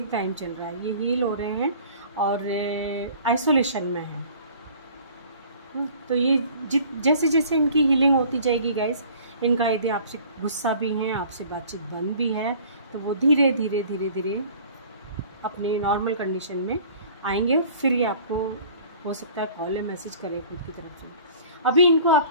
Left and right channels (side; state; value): both; inverted; correlation -0.49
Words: टाइम चल रहा है, ये हील हो रहे हैं और आइसोलेशन में है। तो ये जैसे जैसे इनकी हीलिंग होती जाएगी गाइस, इनका यदि आपसे गुस्सा भी है, आपसे बातचीत बंद भी है, तो वो धीरे धीरे धीरे धीरे अपने नॉर्मल कंडीशन में आएंगे। फिर ये आपको हो सकता है कॉल या मैसेज करें खुद की तरफ से। अभी इनको